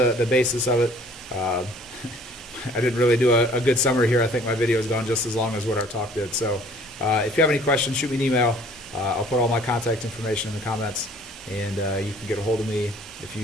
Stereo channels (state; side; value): normal; both; correlation 0.54